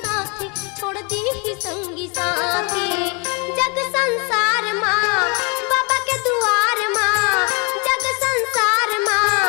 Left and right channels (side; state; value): right; quieter; 32.6 dB